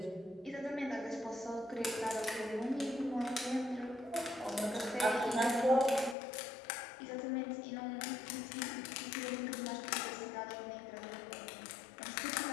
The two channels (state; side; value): drops out; right; at 6.2 s